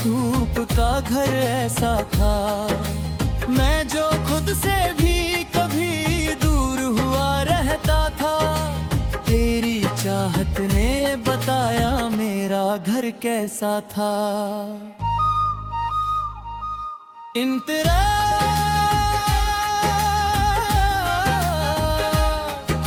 धूप का घर ऐसा था। मैं जो खुद से भी कभी दूर हुआ रहता था, तेरी चाहत ने बताया मेरा घर कैसा था। इंतरा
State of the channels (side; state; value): both; identical; correlation 1.00